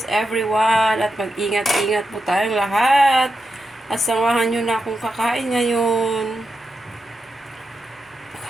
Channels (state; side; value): normal; both; correlation 0.87